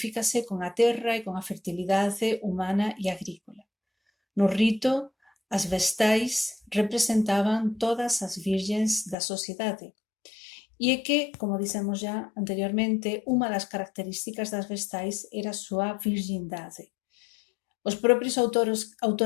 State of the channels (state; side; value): drops out; right; at 9.2 s